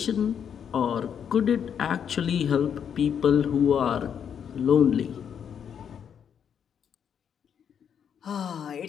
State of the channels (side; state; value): right; quieter; 8.0 dB